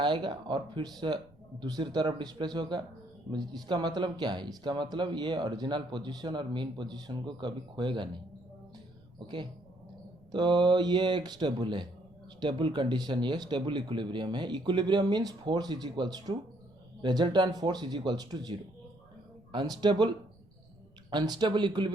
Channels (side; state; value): right; noise; rumble, 29 dB below the sound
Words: और फिर से दूसरी तरफ डिस्प्लेस होगा। इसका मतलब क्या है? इसका मतलब ये ओरिजिनल पोजीशन और मीन पोजीशन को कभी खोएगा नहीं। ओके, तो ये एक स्टेबल है, स्टेबल कंडीशन, ये स्टेबल इक्विलिब्रियम है। Equilibrium means force is equals to resultant force is equals to zero. Unstable unstable